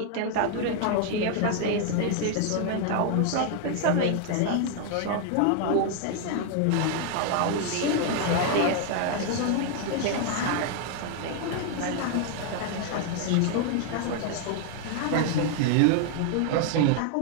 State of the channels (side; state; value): both; different; correlation 0.00